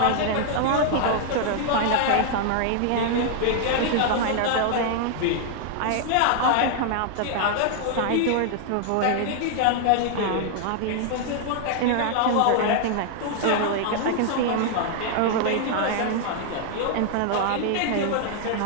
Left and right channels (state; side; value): different; both; correlation 0.00